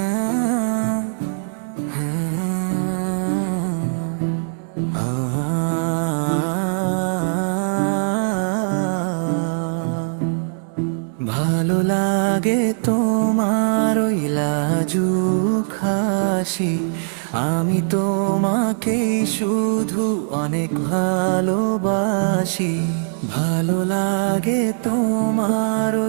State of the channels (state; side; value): silent; left; digital silence